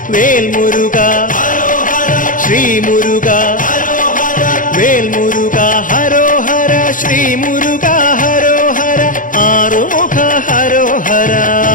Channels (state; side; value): late; right; 0.39 ms